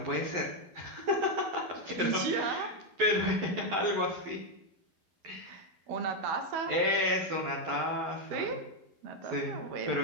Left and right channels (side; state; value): left; late; 12 ms